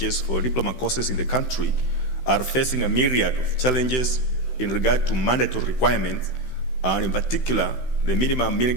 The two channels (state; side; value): late; right; 16 ms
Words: for diploma courses in the country are facing a myriad of challenges in regard to mandatory requirements, and in particular, the minimum mean